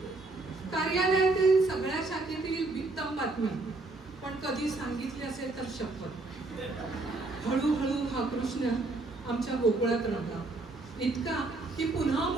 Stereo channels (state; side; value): quieter; left; 3.2 dB